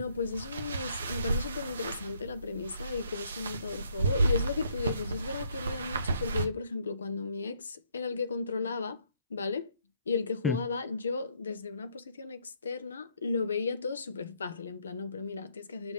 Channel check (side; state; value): both; inverted; correlation -0.68